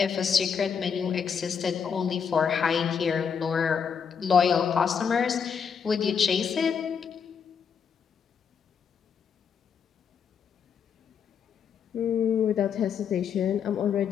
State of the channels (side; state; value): right; quieter; 6.8 dB